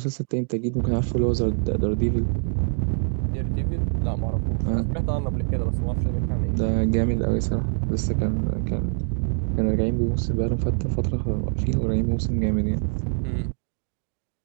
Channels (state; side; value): silent; left; digital silence